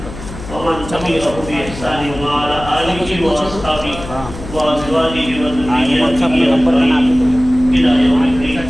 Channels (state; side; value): noise; left; hum, 12 dB below the sound